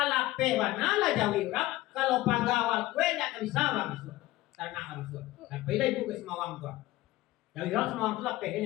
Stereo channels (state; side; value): quieter; right; 17.5 dB